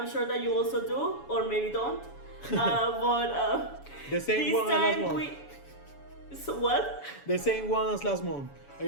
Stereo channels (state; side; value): late; right; 7.1 ms